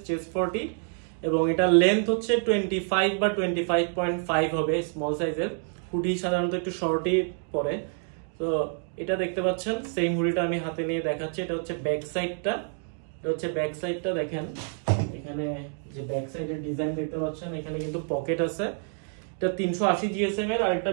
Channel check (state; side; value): silent; left; 55 dB below the other